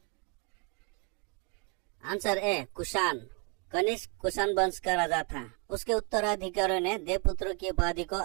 Answer A Kushan. कनिष्क कुषाण वंश का राजा था। उसके उत्तराधिकारियों ने देवपुत्र की उपाधि को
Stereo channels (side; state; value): left; quieter; 34.4 dB